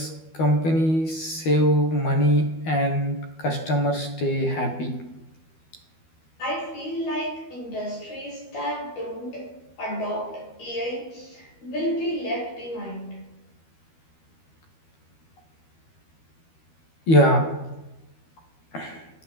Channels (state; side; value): late; right; 12 ms